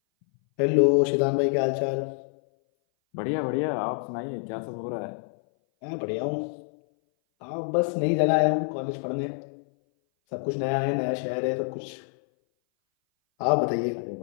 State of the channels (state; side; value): silent; right; 58 dB below the other